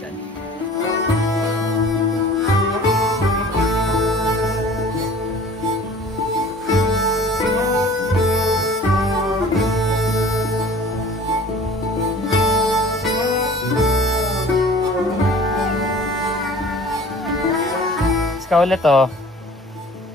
dyan. Ikaw ulit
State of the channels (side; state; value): both; normal; correlation 0.46